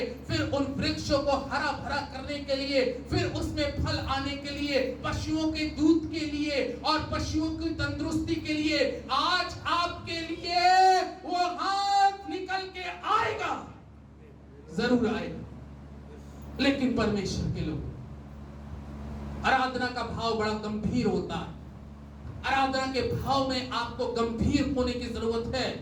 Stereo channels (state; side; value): identical; both; correlation 1.00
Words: फिर उन वृक्षों को हरा भरा करने के लिए, फिर उसमें फल आने के लिए, पशुओं के दूध के लिए और पशुओं की तंदुरुस्ती के लिए आज आपके लिए वो हाथ निकल के आएगा। जरूर आएगा। लेकिन परमेश्वर के लोग, आराधना का भाव बड़ा गंभीर होता है। आराधना के भाव में आपको गंभीर होने की जरूरत है।